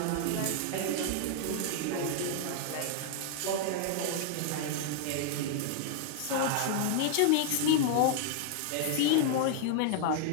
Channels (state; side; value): different; both; correlation -0.01